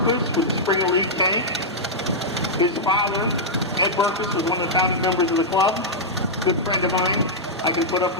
with a Springer Leaf tank. His father, Ed Berkowitz, was one of the founding members of the club. Good friend of mine. I can put up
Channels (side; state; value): both; normal; correlation -0.07